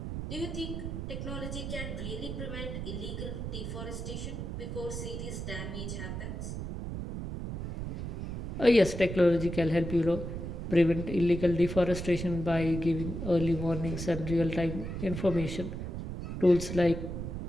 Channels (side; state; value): right; noise; rumble, 5 dB below the sound